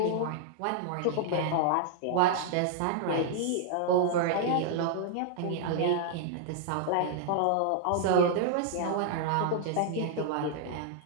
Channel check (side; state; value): both; different; correlation 0.00